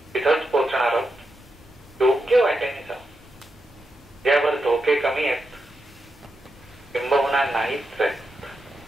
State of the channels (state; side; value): normal; both; correlation 0.86